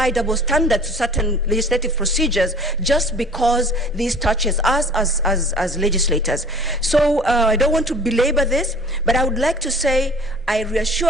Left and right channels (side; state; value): both; normal; correlation 0.47